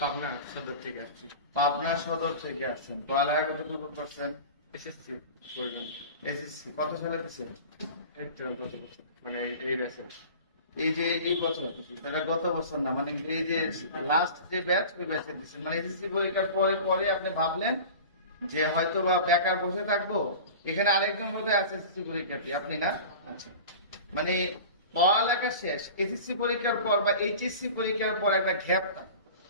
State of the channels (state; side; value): inverted; both; correlation -0.37